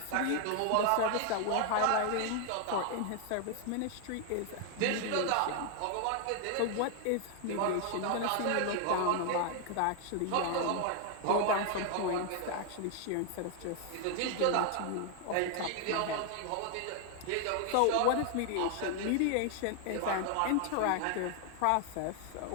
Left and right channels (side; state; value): both; different; correlation 0.00